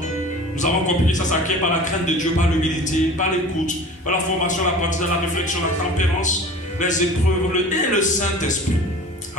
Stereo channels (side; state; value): both; normal; correlation 0.41